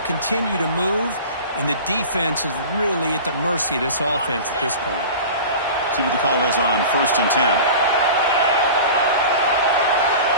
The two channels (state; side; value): inverted; both; correlation -0.36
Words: to move, and the defense is really at the mercy of this offense at this point. See what the call is on 1st and 10.